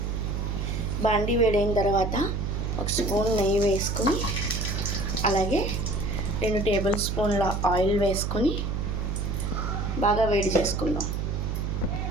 బాండీ వేడైన తర్వాత 1 స్పూన్ నెయ్యి వేసుకుని, అలాగే 2 టేబుల్ స్పూన్ల ఆయిల్ వేసుకొని బాగా వేడి చేసుకుందాం.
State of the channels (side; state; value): right; noise; hum, 1 dB below the sound